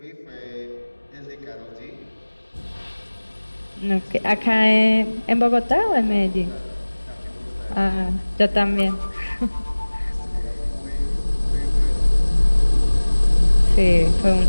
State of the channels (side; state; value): both; inverted; correlation -1.00